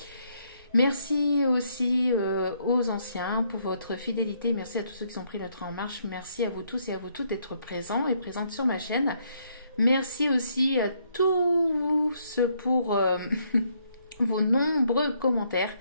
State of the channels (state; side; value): inverted; both; correlation -0.72